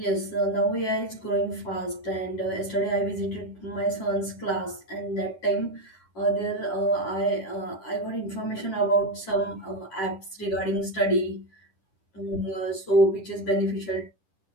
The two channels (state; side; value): late; right; 10 ms